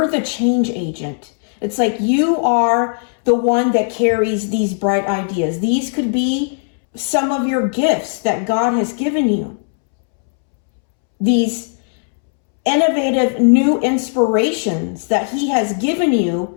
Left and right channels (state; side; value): silent; right; 68 dB below the other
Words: the change agent. It's like you are the one that carries these bright ideas. These could be some of your gifts that God has given you. These innovative new inspirations that He has given you